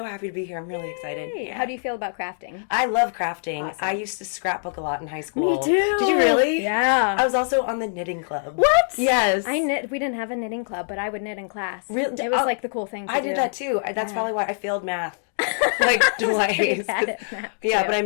happy to be here. I'm really excited. Yeah. How do you feel about crafting? I love crafting. Awesome. I used to scrapbook a lot in high school. Me too. Did you really? Yeah. I was also on the knitting club. What? Yes. I knit. We didn't have a knitting club, but I would knit in class. Really? It was like the cool thing to do. I did that too. That's probably why I failed math. Like twice. Yeah, but I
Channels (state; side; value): silent; right; digital silence